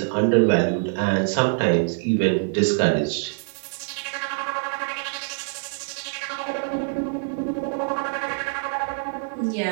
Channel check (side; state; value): left; silent; digital silence